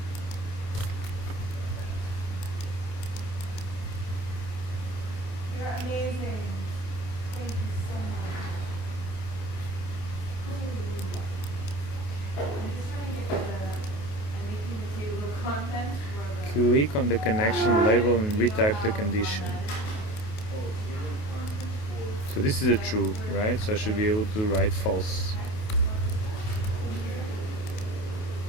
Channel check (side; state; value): right; late; 28 ms